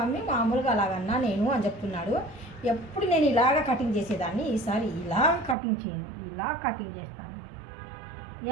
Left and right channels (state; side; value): drops out; left; at 5.6 s